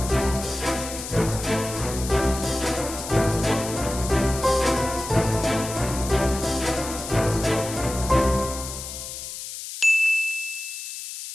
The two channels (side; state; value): left; noise; hiss, 9 dB below the sound